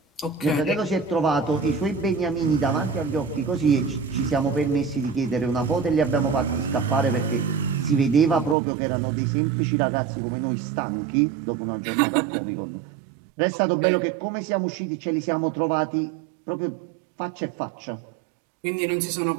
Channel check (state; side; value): drops out; left; at 8.6 s